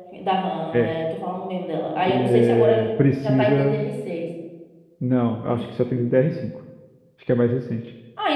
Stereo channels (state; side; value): identical; both; correlation 1.00